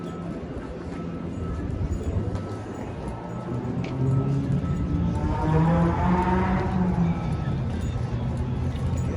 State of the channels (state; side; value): identical; both; correlation 1.00